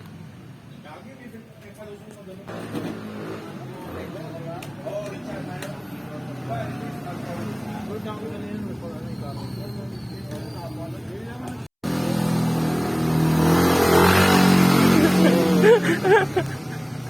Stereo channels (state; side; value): identical; both; correlation 1.00